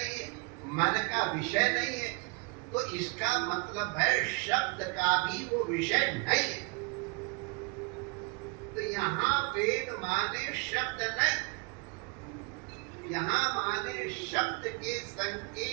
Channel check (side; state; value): left; quieter; 31.7 dB